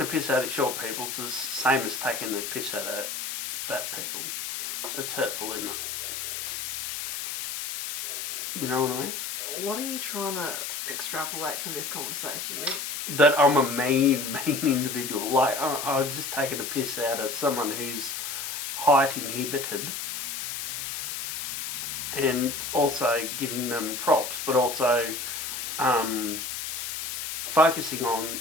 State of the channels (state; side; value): noise; left; hiss, 4 dB below the sound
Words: piss out of short people is the same as taking the piss out of fat people. It's hurtful, isn't it? You know what I mean? What are you trying to extrapolate from this conversation, Rick? That I'm a mean individual. Like, I was just taking a piss out of someone who's height inhibited and also giving them props, but also focusing on